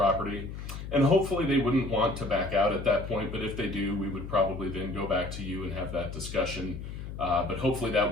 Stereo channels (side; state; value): left; noise; hum, 9 dB below the sound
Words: And hopefully they wouldn't want to back out at that point, but if they do, we would probably then go back to you and have that discussion. But hopefully that